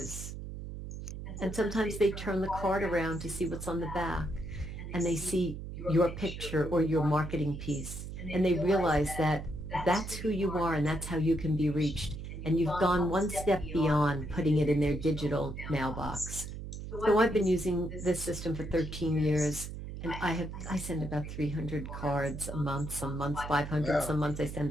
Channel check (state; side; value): noise; right; hum, 8 dB below the sound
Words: And sometimes they turn the card around to see what's on the back, and they see your picture or your marketing piece, and they realize that that's who you are and that's how you can be reached. And you've gone one step beyond putting it in their digital mailbox. So I've been using this system for 13 years, and I send about 300 cards a month, some months 500, some months I send